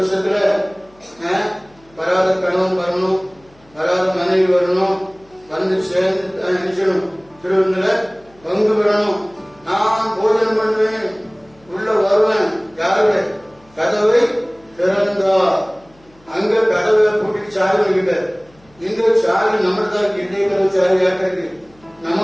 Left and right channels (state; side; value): noise; left; hum, 30 dB below the sound